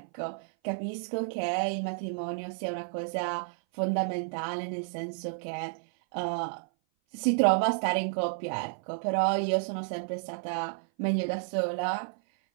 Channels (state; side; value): silent; left; 56 dB below the other